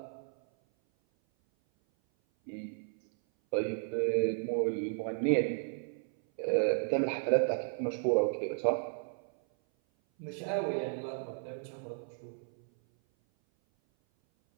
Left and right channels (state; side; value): silent; left; 55 dB below the other